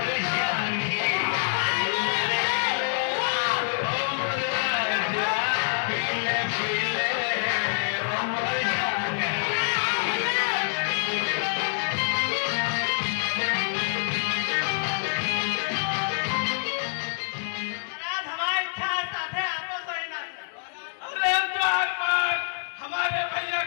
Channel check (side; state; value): right; silent; digital silence